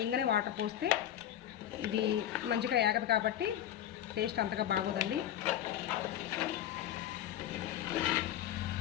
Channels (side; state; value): right; quieter; 11.4 dB